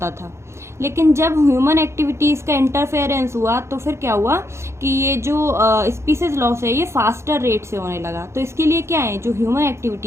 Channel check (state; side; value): late; left; 0.13 ms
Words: था, लेकिन जब ह्यूमन एक्टिविटीज़ का इंटरफेरेंस हुआ तो फिर क्या हुआ कि ये जो स्पीसीज लॉस है ये फास्टर रेट से होने लगा। तो इसके लिए क्या है, जो ह्यूमन